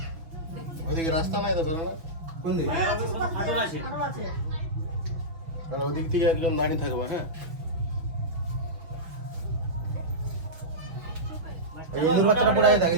ওদিকে রাস্তা নাই তো বেরো না কোন দিকে হাঁটু আছে আর ওদিক থেকে একজন দাঁড়িয়ে থাকবে হ্যাঁ এই ইন্দুর বাচ্চাটা পড়ে যায়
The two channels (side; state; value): left; late; 6.1 ms